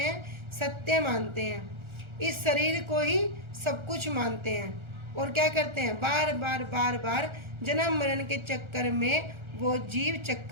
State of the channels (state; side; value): late; left; 1.4 ms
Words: सत्य मानते हैं। इस शरीर को ही सब कुछ मानते हैं और क्या करते हैं? बार बार बार बार जन्म मरण के चक्कर में वो जीव